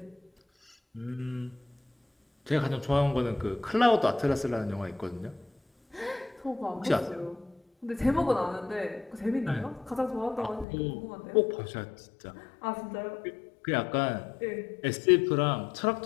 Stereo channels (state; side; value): drops out; right; at 10.7 s